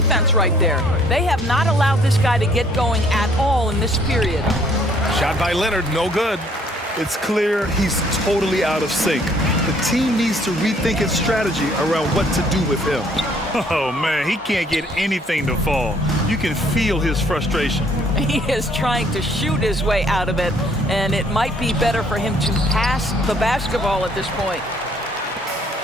right there. They have not allowed this guy to get going at all in this period. Shot by Leonard, no good. It's clear he's totally out of sync. The team needs to rethink its strategy around what to do with him. Oh, man, he can't get anything to fall. You can feel his frustration. He is trying to shoot his way out of it, and it might be better for him to pass the basketball at this point.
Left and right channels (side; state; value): both; normal; correlation 0.62